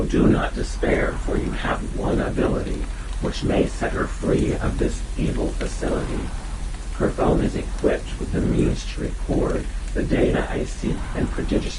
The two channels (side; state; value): both; identical; correlation 1.00